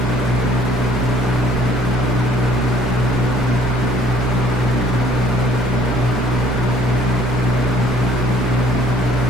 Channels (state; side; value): normal; both; correlation 0.58